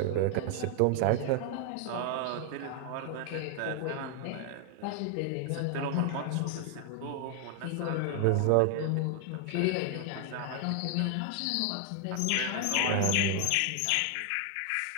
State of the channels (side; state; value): both; different; correlation 0.00